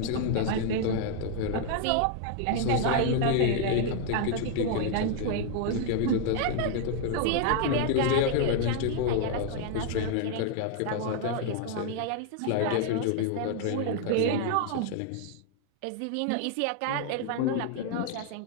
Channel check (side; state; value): both; different; correlation 0.00